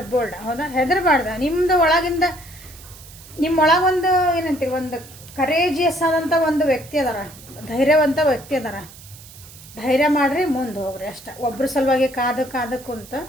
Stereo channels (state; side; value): noise; right; hiss, 19 dB below the sound